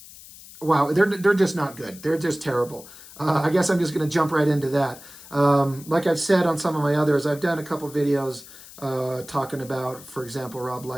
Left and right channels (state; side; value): noise; left; hiss, 18 dB below the sound